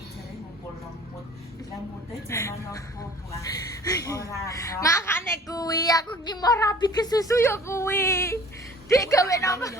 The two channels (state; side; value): normal; both; correlation 0.48